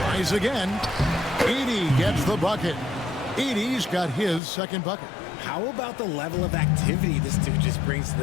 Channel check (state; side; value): drops out; right; at 4.4 s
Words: again. Edey gets the bucket. Edey's got his second bucket. How about the level of activity this dude just brings to